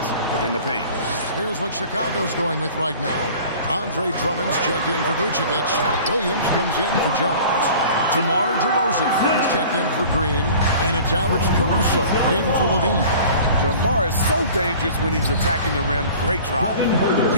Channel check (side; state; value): both; inverted; correlation -0.44